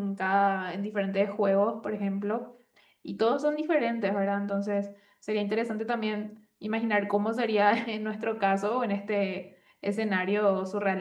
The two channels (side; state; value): both; identical; correlation 1.00